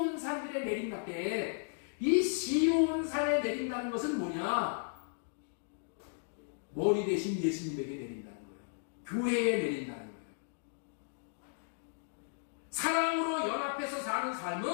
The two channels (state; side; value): silent; right; digital silence